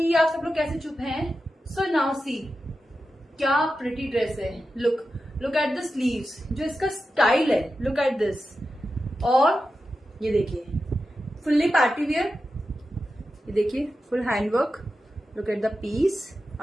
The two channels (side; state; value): both; normal; correlation 0.91